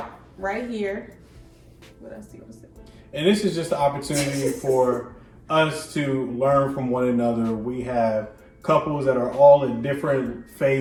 right here. What else do you want to say? And this is just an opportunity for us to learn from one another. We have couples that are all in different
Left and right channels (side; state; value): both; identical; correlation 1.00